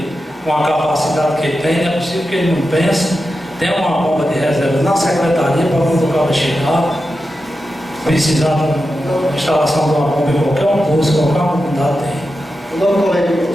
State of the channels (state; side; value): normal; both; correlation 0.90